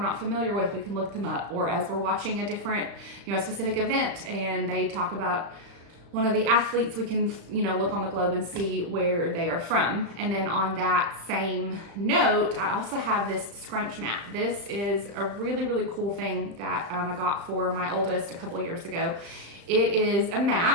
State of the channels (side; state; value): left; late; 35 ms